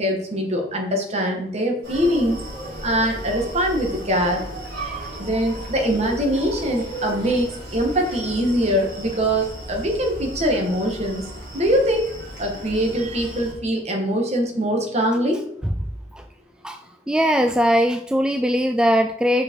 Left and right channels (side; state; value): both; normal; correlation 0.55